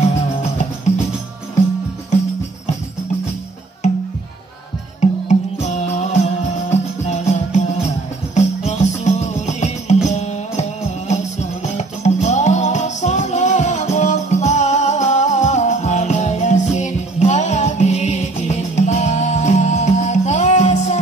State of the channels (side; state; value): left; quieter; 3.3 dB